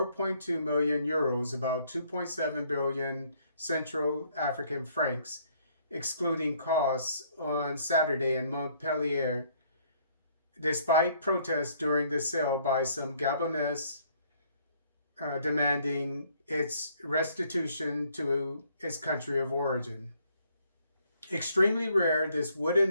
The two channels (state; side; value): inverted; both; correlation -0.65